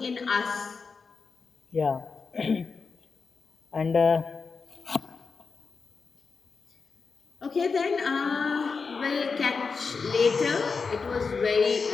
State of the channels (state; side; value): quieter; right; 4.9 dB